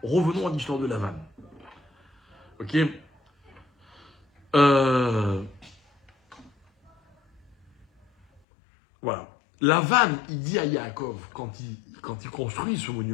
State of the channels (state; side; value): drops out; right; at 8.4 s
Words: Revenons à l'histoire de Lavan. Ok? Voilà. Lavan, il dit à Yaakov, quand il construit ce